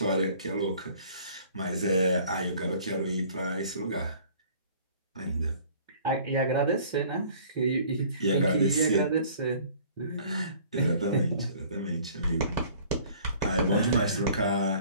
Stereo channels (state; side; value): inverted; both; correlation -0.52